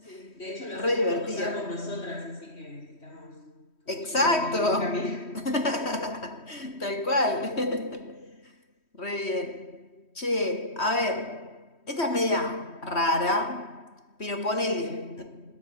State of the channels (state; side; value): late; right; 3.1 ms